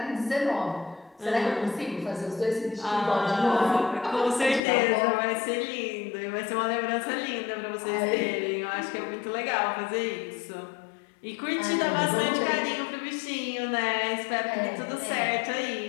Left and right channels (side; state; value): right; drops out; at 4.6 s